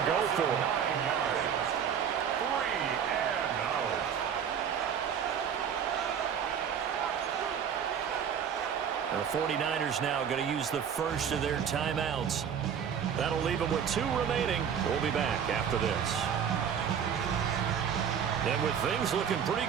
go for it. 3 and out. The 49ers now going to use the first of their timeouts. That'll leave them with 2 remaining. We'll be back after this. And with things looking pretty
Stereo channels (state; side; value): quieter; left; 7.9 dB